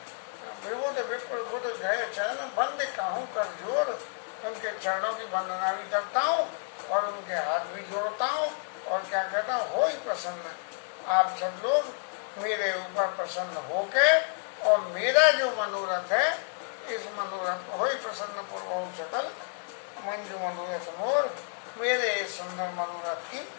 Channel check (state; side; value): silent; right; 58 dB below the other